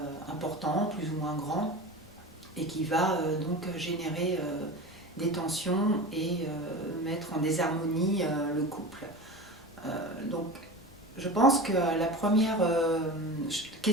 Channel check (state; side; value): normal; both; correlation 0.31